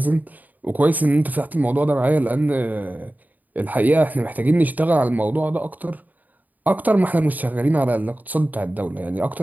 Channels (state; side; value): late; left; 0.081 ms